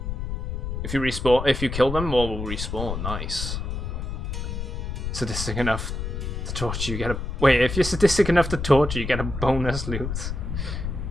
If you respawn, if you kill them, more will respawn. Nice. Sadistic enough to torture, you get a. Wait, if you're sadistic enough to torture, you get a bonus loot.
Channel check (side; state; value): left; noise; rumble, 4 dB below the sound